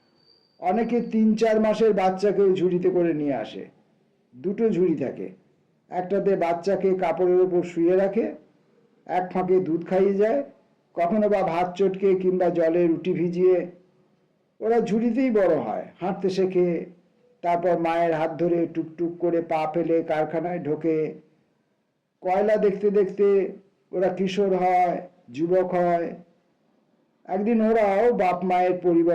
অনেকে 3-4 মাসের বাচ্চাকেও ঝুড়িতে করে নিয়ে আসে। 2টো ঝুড়ি থাকে, একটাতে বাচ্চাকে কাপড়ের ওপর শুয়ে রাখে, এক ফাঁকে দুধ খাইয়ে যায়, কখনো বা ভাত চটকে কিংবা জলে রুটি ভিজিয়ে। ওরা ঝুড়িতেই বড় হয়, হাঁটতে শেখে, তারপর মায়ের হাত ধরে টুকটুক করে পা ফেলে কারখানায় ঢোকে। কয়লা দেখতে দেখতে ওরা কিশোর হয়, যুবক হয়। একদিন ওরাও বাপ মায়ের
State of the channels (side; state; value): both; identical; correlation 1.00